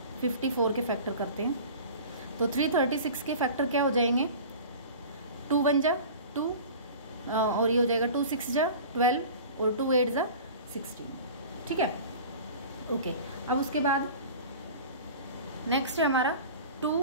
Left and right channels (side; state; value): both; inverted; correlation -0.39